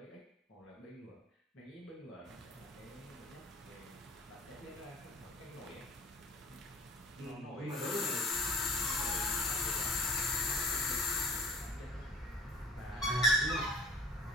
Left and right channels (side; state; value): both; normal; correlation 0.48